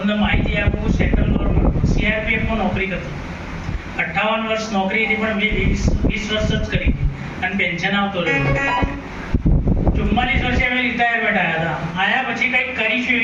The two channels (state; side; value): identical; both; correlation 1.00